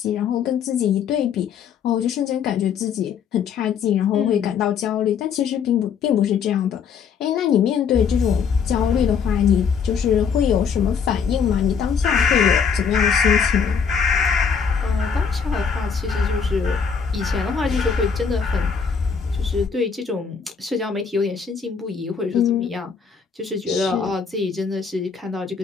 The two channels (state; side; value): quieter; right; 6.5 dB